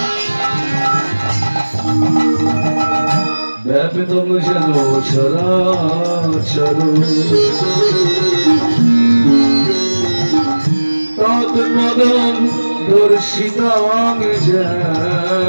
ব্যাপিতম যেন চরাচর তৎপদং দর্শিতাং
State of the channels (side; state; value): both; inverted; correlation -1.00